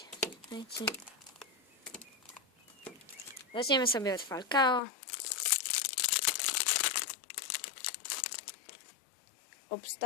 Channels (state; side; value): drops out; right; at 4.8 s